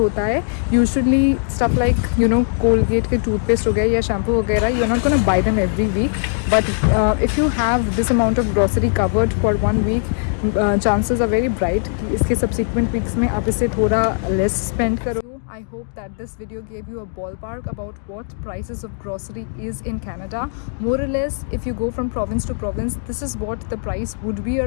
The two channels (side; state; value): right; silent; digital silence